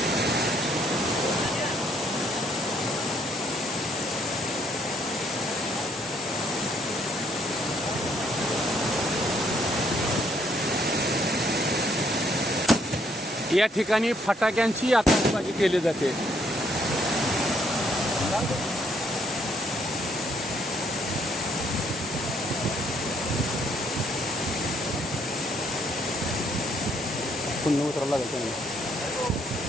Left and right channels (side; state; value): both; normal; correlation 0.69